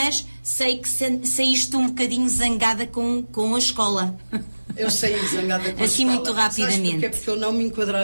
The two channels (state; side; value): inverted; both; correlation -1.00